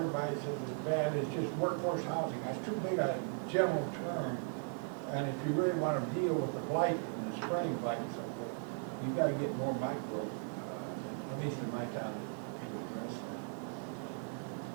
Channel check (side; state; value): left; silent; 53 dB below the other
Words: says it's bad, it's just workforce housing. That's too big a general term. And if you really want to deal with the blight and the spring blight and so forth, you've got to get more micro, at least in my town, to address that.